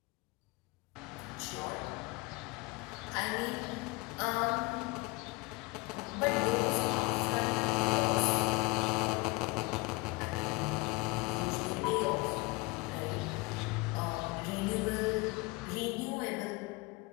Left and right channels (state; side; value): quieter; right; 24.8 dB